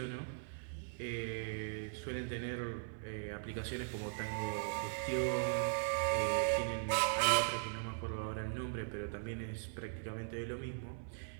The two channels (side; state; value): left; silent; 51 dB below the other